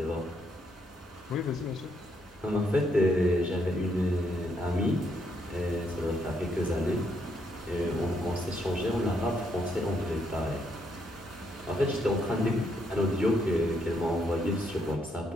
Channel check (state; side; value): normal; both; correlation 0.75